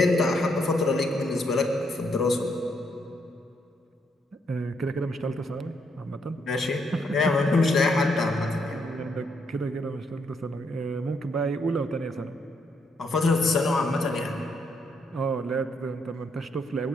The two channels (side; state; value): both; normal; correlation 0.75